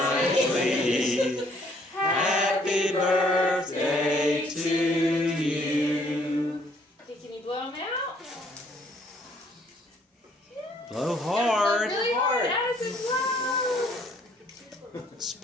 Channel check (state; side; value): normal; both; correlation 0.64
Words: Happy birthday to you. Okay, can you blow them out? Blow hard. Really hard. Addison, blow.